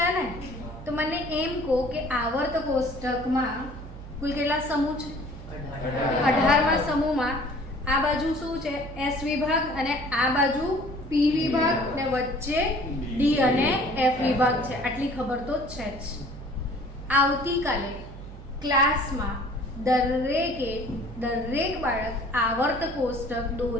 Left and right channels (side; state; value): both; normal; correlation 0.51